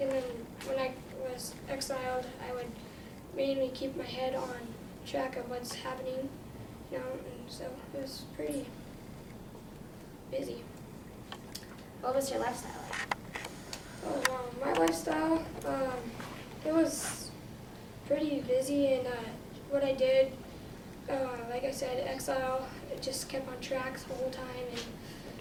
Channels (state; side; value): identical; both; correlation 1.00